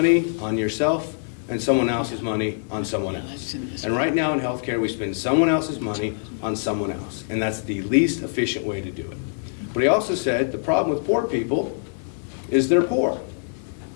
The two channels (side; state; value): right; silent; digital silence